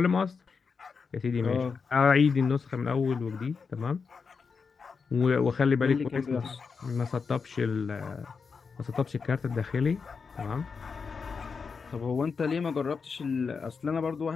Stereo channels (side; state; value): right; quieter; 5.3 dB